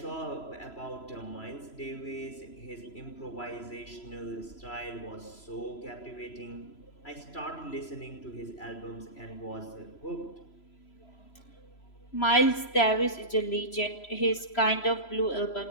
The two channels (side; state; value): right; late; 3.0 ms